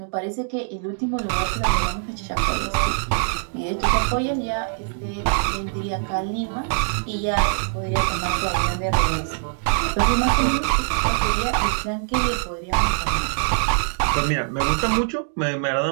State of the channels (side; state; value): left; silent; digital silence